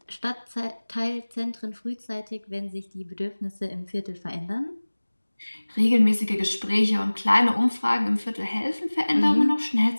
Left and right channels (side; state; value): both; inverted; correlation -1.00